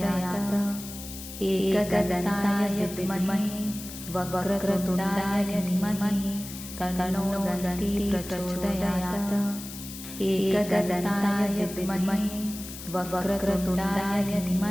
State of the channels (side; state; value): left; noise; hiss, 12 dB below the sound